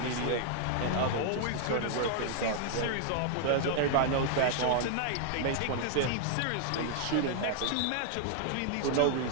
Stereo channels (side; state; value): both; different; correlation 0.00